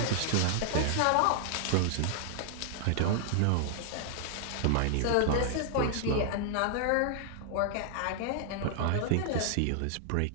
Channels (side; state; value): both; different; correlation 0.00